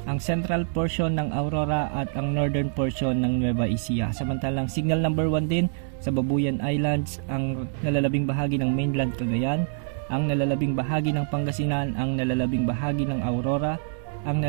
ang central portion ng Aurora at ang northern portion ng Nueva Ecija. Samantalang signal number 1 din sa Babuyan Islands, ang nalalabing bahagi ng mainland Cagayan, ang nalalabing bahagi ng Pangasinan, ang nalalabing bahagi ng Aurora, ang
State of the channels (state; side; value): silent; left; digital silence